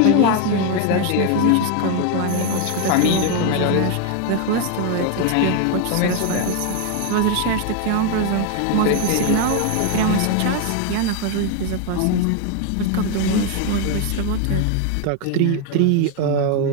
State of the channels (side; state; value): both; different; correlation 0.01